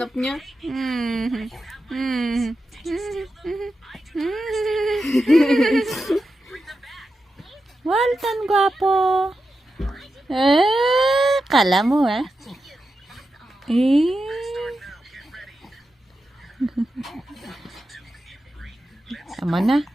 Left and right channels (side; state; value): both; normal; correlation 0.90